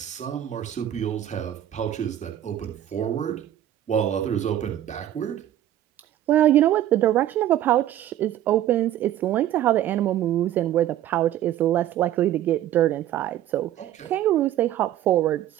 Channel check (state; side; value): quieter; left; 12.3 dB